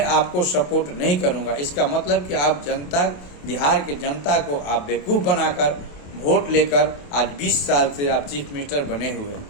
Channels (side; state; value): right; late; 28 ms